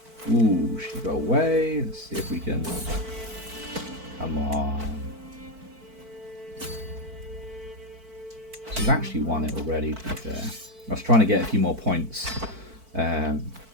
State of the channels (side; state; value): left; late; 4.5 ms